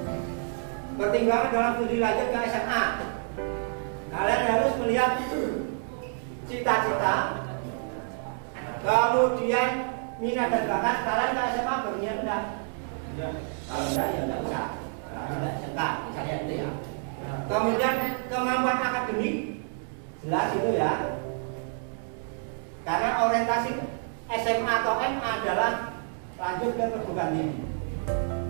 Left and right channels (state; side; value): silent; left; 59 dB below the other